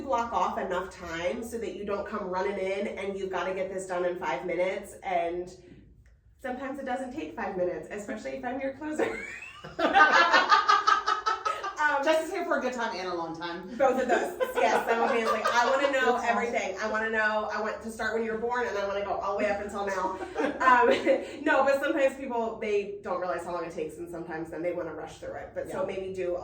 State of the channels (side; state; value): both; identical; correlation 1.00